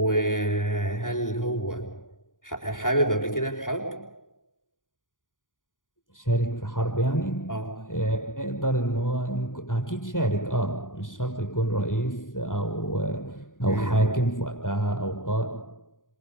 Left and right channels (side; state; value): right; late; 0.89 ms